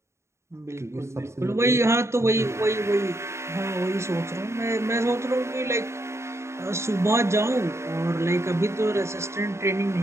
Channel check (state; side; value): late; left; 0.13 ms